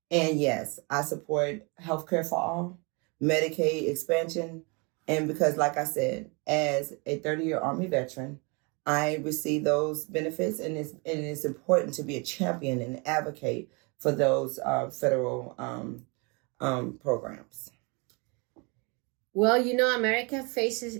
And yes, I support healthcare for all, Medicaid expansion, and because, like I said, as a 30-year Army veteran, I receive those benefits, and it's important to be a champion and advocate for those federal programs. Well, you know, America faces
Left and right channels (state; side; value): quieter; left; 31.0 dB